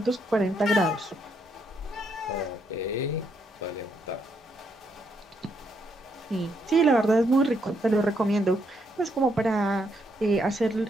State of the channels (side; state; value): both; normal; correlation 0.76